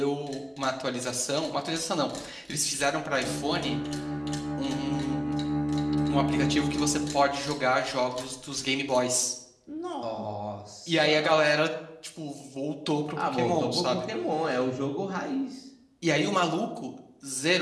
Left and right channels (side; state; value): both; identical; correlation 1.00